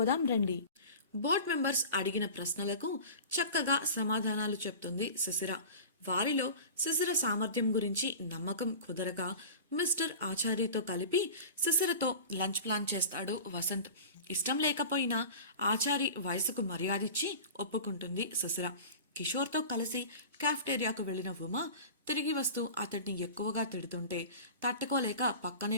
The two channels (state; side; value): inverted; both; correlation -0.36